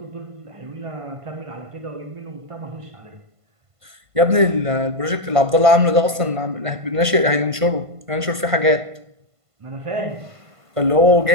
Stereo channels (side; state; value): left; late; 1.5 ms